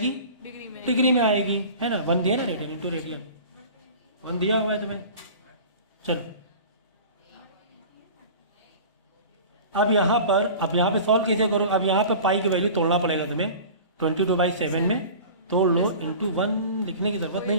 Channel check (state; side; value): inverted; both; correlation -0.39